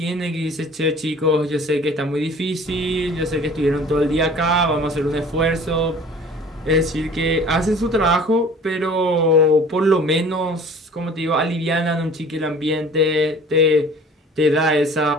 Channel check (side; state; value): both; normal; correlation 0.47